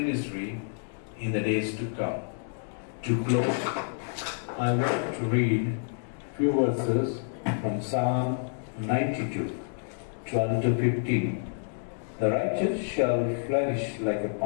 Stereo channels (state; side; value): silent; right; digital silence